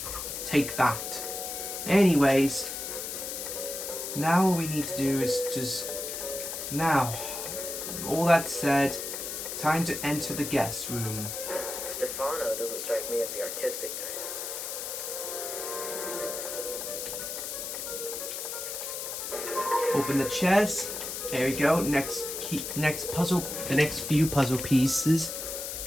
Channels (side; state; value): left; noise; hiss, 5 dB below the sound